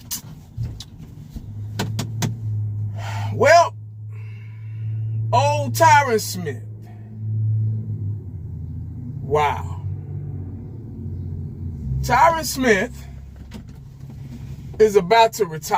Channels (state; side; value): identical; both; correlation 1.00